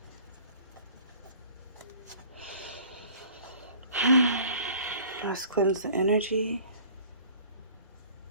Let's cleanse the energy.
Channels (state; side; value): inverted; both; correlation -0.49